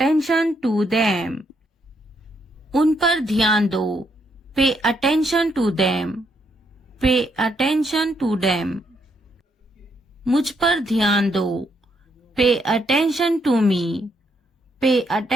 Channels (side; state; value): both; normal; correlation 0.75